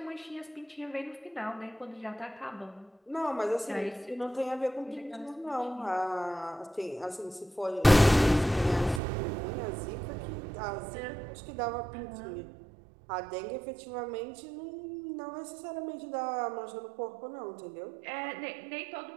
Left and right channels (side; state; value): left; drops out; at 9.0 s